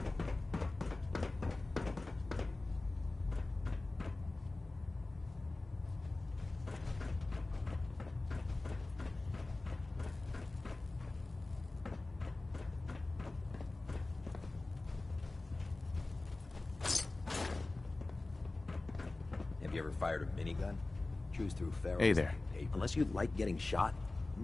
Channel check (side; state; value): right; quieter; 3.1 dB